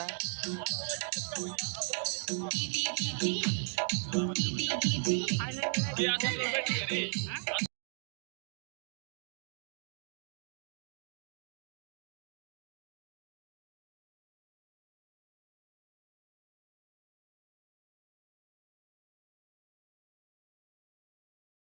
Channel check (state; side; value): silent; left; 52 dB below the other